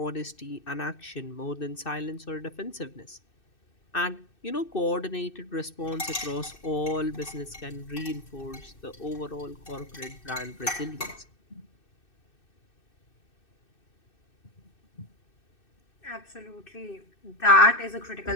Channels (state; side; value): late; right; 2.6 ms